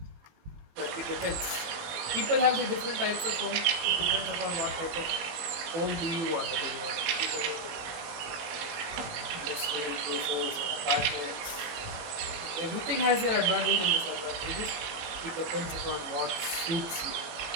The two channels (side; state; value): left; late; 19 ms